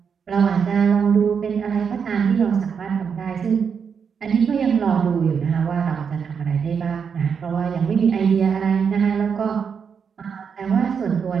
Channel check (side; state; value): left; quieter; 6.6 dB